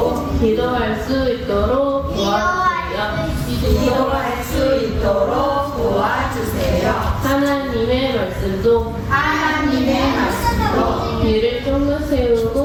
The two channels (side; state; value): both; identical; correlation 1.00